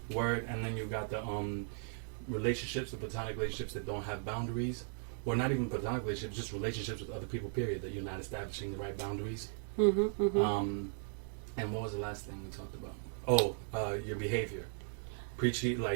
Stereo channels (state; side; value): silent; left; 53 dB below the other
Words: Word, and then you got the relationships, the platonic relationships that don't have boundaries. Or not even platonic relationships, just relationships with other people, period, that you're not establishing the right boundaries. And what was the last thing we talked about? Your behavior. Preaching,